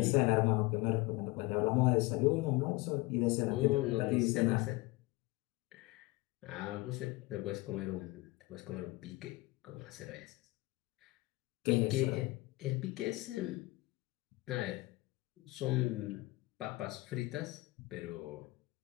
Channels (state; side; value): quieter; right; 21.7 dB